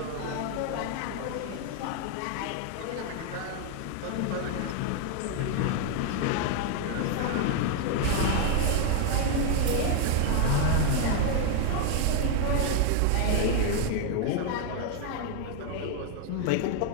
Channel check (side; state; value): both; different; correlation 0.00